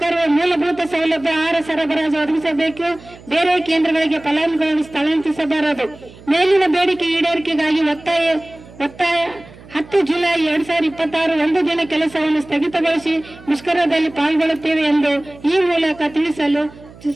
ಮೂಲಭೂತ ಸೌಲಭ್ಯ ಆಹಾರ ಸರಬರಾಜು ಒದಗಿಸಬೇಕು. ಬೇರೆ ಕೇಂದ್ರಗಳಿಗೆ ಫಲಾನುಭವಿಗಳನ್ನು ಸ್ಥಳಾಂತರಿಸಬಾರದು. ಮೇಲಿನ ಬೇಡಿಕೆ ಈಡೇರಿಕೆಗಾಗಿ ಒತ್ತಾಯ 10 ಜುಲೈ 2026 ಒಂದು ದಿನ ಕೆಲಸವನ್ನು ಸ್ಥಗಿತಗೊಳಿಸಿ ಮುಷ್ಕರದಲ್ಲಿ ಪಾಲ್ಗೊಳ್ಳುತ್ತೇವೆ ಎಂದು ಈ ಮೂಲಕ ತಿಳಿಸಲು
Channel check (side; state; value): right; noise; hum, 21 dB below the sound